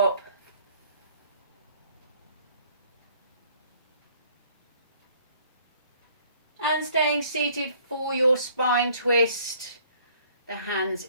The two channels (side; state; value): both; inverted; correlation -0.59